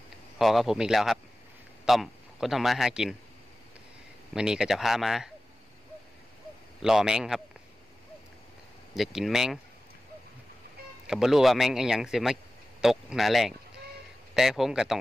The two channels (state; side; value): normal; both; correlation 0.95